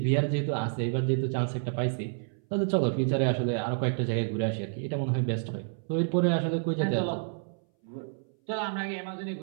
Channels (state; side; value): silent; left; 58 dB below the other